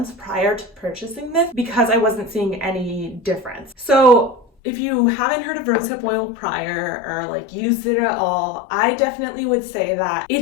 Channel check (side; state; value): right; drops out; at 4.5 s